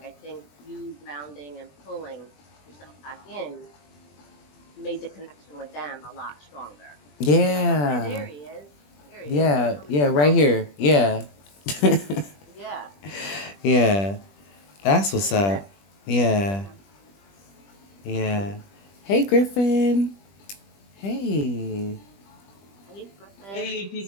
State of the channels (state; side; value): late; right; 20 ms